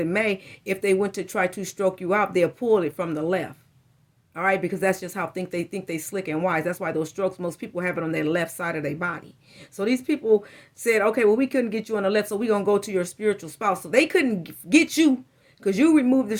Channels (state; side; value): identical; both; correlation 1.00